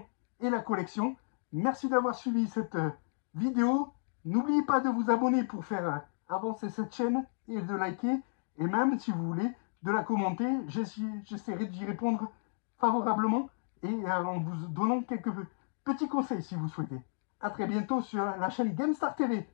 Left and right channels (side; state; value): right; silent; digital silence